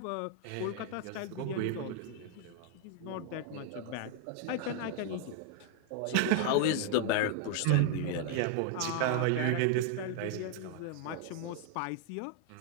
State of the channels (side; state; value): both; different; correlation 0.00